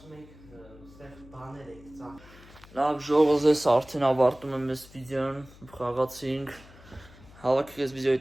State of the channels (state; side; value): noise; left; hum, 22 dB below the sound